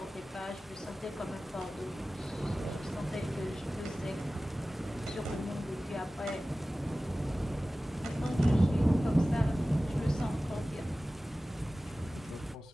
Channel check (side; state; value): both; normal; correlation 0.96